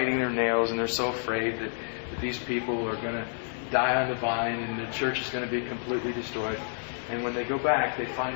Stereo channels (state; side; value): silent; right; digital silence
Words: their nails, and they're so afraid that these people are going to die on the vine and the church is going to be completely destroyed. And when they go back, they